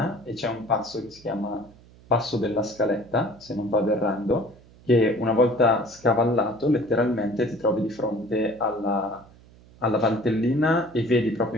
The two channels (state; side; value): noise; right; hum, 25 dB below the sound